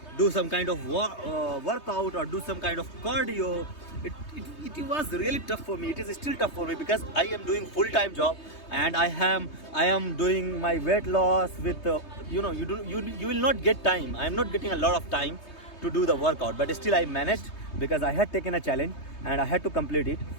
do some kind of workout or do some kind of cardio. It was really tough for me. It is still tough for me because I am doing full-time job and I am doing my weight loss with you will not get time. I am not getting a lot of time to do the workout, but still I managed because I had taken a challenge and I had to complete it.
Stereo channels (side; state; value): right; late; 3.2 ms